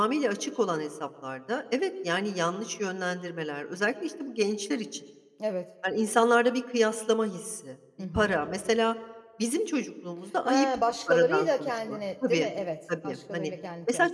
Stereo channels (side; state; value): both; identical; correlation 1.00